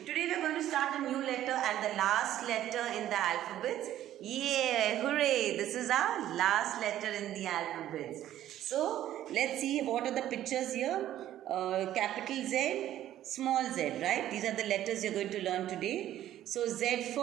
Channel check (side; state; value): left; quieter; 12.6 dB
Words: Today we are going to start a new letter and the last letter in the alphabets. Yeah, hooray! This is our last letter in the alphabets. So let's see what are the pictures here. Capital Z, small z, right? These are the letters you are going to learn today. So Z